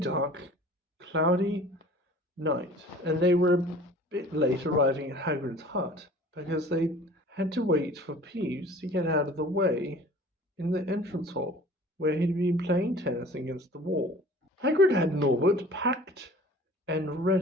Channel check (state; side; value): normal; both; correlation 0.46